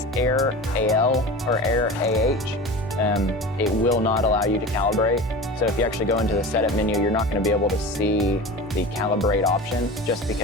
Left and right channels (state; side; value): normal; both; correlation 0.33